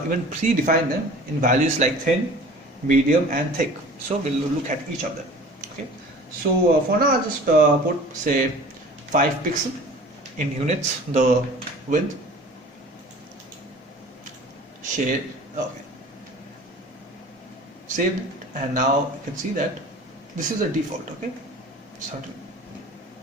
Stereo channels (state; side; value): normal; both; correlation 0.44